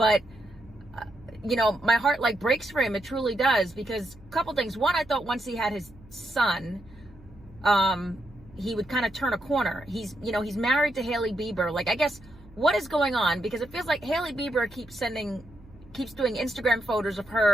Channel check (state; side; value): noise; right; hum, 23 dB below the sound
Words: my heart breaks for him. It truly does, because a couple things. One, I thought once he had his son, he would kind of turn a corner. He's married to Hailey Bieber. I guess what is going on? Because it feels like Hailey Bieber keeps doing Instagram photos of